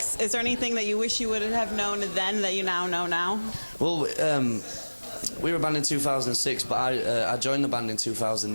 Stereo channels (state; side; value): inverted; both; correlation -1.00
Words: Is there anything that you wish you would have known then that you now know now? Well, we were a band in 2006, but I joined the band in